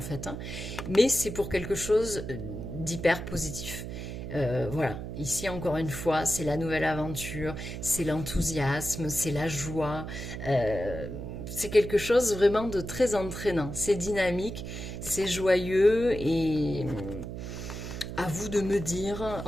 fait. Hein. Mais c'est pour quelque chose d'hyper positif. Voilà, ici encore une fois, c'est la nouvelle aventure, c'est l'enthousiasme, c'est la joie, c'est quelque chose vraiment de très entraînant, c'est dynamique, c'est joyeux et à vous de me dire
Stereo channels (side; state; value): right; noise; hum, 7 dB below the sound